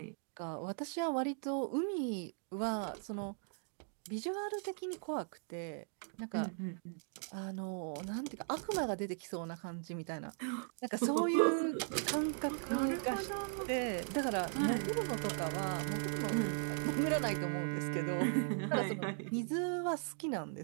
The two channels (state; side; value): silent; left; 52 dB below the other